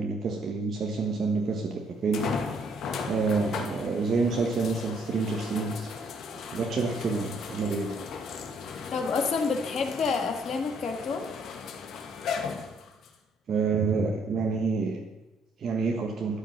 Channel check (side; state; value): both; normal; correlation 0.66